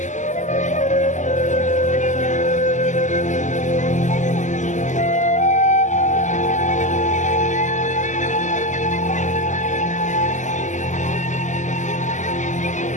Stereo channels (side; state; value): right; late; 0.35 ms